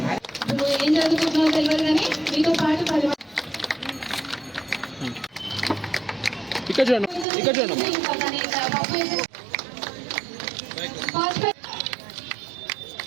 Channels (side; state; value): left; drops out; at 7.2 s